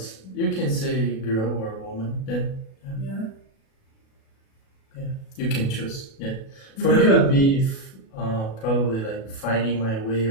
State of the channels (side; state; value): right; late; 37 ms